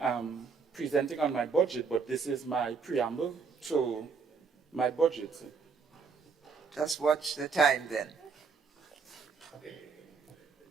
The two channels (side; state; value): left; quieter; 5.3 dB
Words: am presenting on my budget, but this is my preamble to my budget. Just watch the time then.